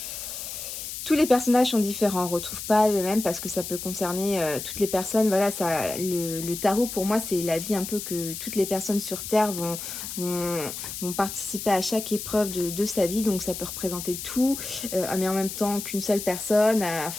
Tous les personnages sont différents, on ne retrouve pas le même parce que ça peut concerner toutes les personnes. Voilà, le tarot pour moi c'est la vie un peu que toutes les personnes sur Terre vont participer à chaque épreuve de sa vie. Donc ça peut représenter tout, mais en même temps qu'une seule personne.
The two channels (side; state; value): left; noise; hiss, 7 dB below the sound